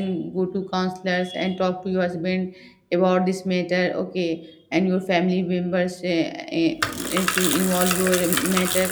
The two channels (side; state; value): both; identical; correlation 1.00